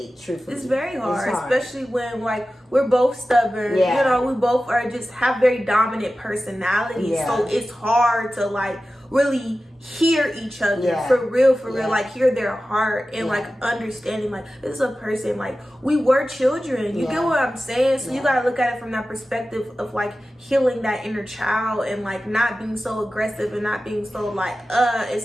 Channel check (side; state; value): both; normal; correlation 0.94